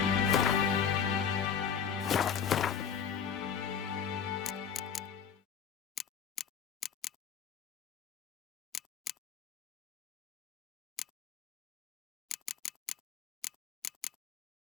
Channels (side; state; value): right; quieter; 7.2 dB